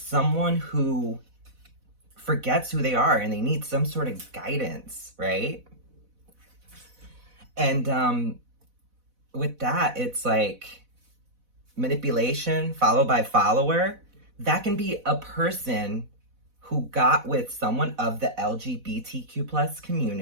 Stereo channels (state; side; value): late; left; 4.1 ms